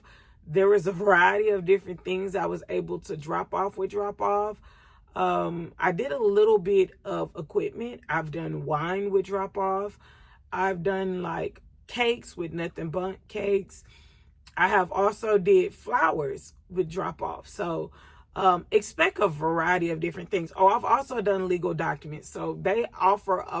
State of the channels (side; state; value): both; identical; correlation 1.00